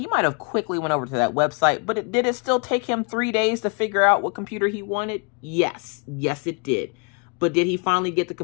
might have quickly went over to that website, but did it still take him 3 days to figure out what computer he wanted? Yes. Yes, it did. But did he finally get the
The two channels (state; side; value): quieter; right; 35.7 dB